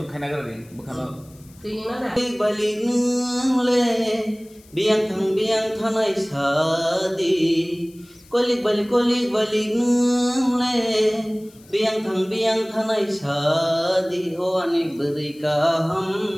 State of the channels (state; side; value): noise; left; hiss, 27 dB below the sound